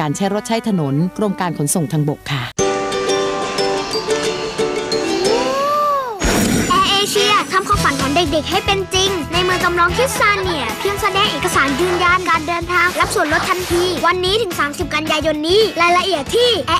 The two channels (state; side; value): identical; both; correlation 1.00